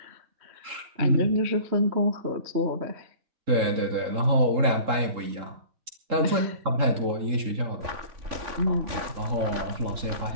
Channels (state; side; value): late; left; 3.7 ms